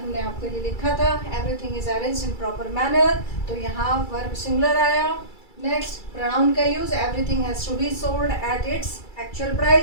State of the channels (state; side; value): late; right; 2.3 ms